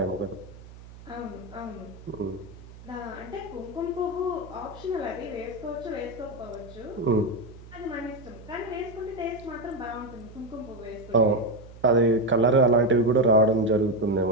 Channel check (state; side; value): noise; right; hum, 18 dB below the sound